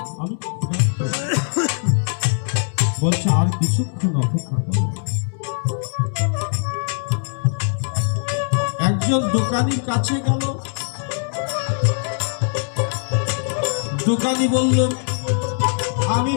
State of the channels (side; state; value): right; silent; 65 dB below the other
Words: আমি বলছে, আর কিছুক্ষণ অপেক্ষা করো। একজন দোকানির কাছে গেল। দোকানি বলল, আমি